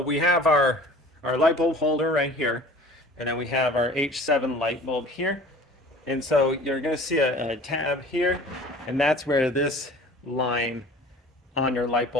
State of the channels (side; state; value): both; normal; correlation 0.44